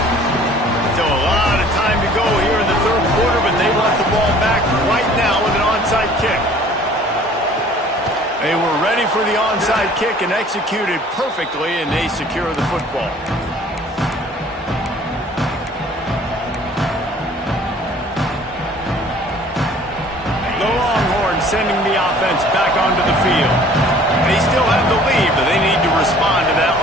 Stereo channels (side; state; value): both; normal; correlation 0.52